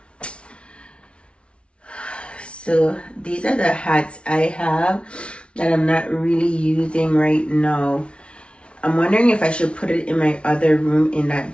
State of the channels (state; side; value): late; right; 0.059 ms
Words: So these are the hats I have that I'm not really using right now. I'm wondering if I should put it in my other room in that